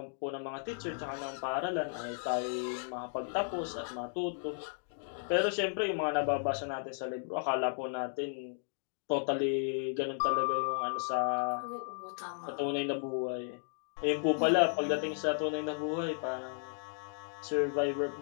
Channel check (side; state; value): right; silent; digital silence